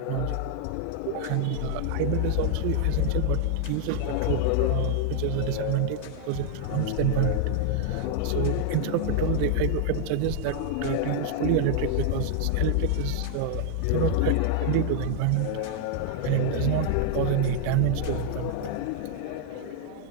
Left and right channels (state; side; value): different; both; correlation 0.00